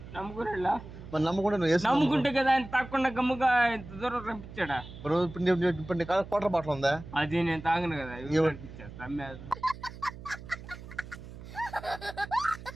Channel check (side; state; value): right; noise; hum, 14 dB below the sound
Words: నమ్ముకున్నా మరి నమ్ముకుంటే నువ్వు వేసి నమ్ముకుంటే కదా ఆయన తాకుండా గమ్ముగా ఇంత దూరం పంపించాడా? ఇప్పుడు నీ క్వార్టర్ బాటిల్ ఉందా? అది నేను తాగను కదా. పంపించేస్తా